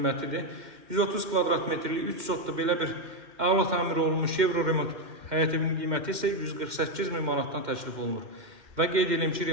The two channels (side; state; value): left; late; 2.1 ms